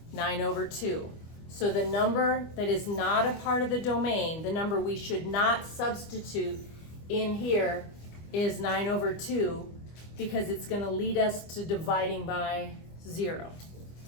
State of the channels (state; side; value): late; right; 25 ms